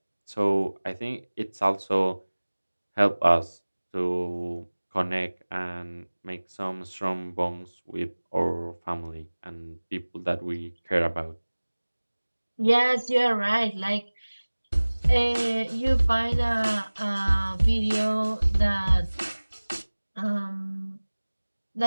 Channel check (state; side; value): inverted; both; correlation -1.00